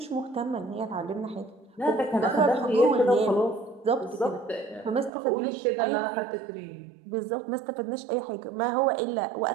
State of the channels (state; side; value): drops out; left; at 5.1 s